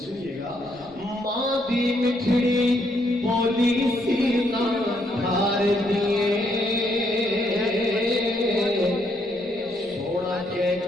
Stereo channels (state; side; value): noise; right; rumble, 28 dB below the sound